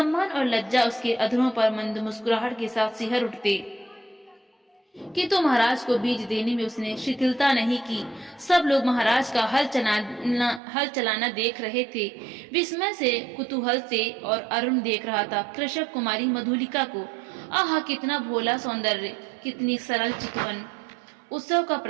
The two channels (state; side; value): drops out; left; at 10.6 s